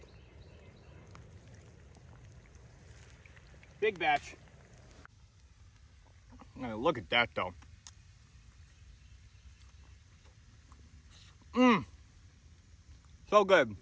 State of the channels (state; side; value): identical; both; correlation 1.00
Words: Big batch. Now look at that though. Mmm. So good.